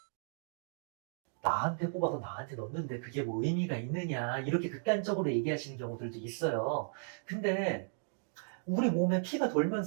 나한테 뽑아서 나한테 넣는데 그게 의미가 있느냐, 이렇게 극단적으로 얘기하시는 경우들도 있어요. 근데 우리 몸에 피가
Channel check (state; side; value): silent; left; digital silence